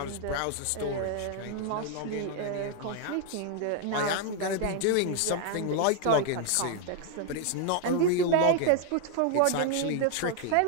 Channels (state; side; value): different; both; correlation 0.00